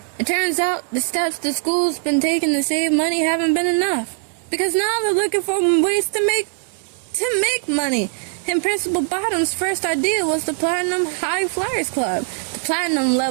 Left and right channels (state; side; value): silent; left; digital silence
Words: It turns out the steps the school's been taking to save money haven't been enough, because now they're looking for ways to make money. And Principal Bottom's first idea was the Platinum High Flyers Club. The Platinum